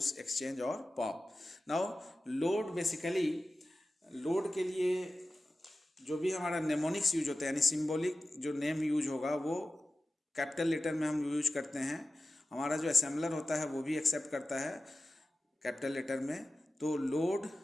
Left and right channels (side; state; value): both; normal; correlation 0.95